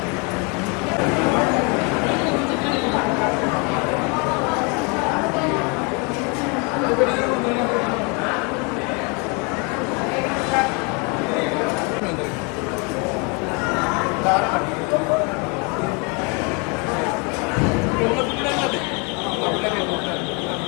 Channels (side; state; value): right; quieter; 32.5 dB